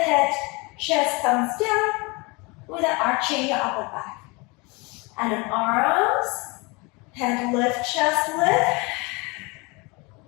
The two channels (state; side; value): quieter; right; 27.3 dB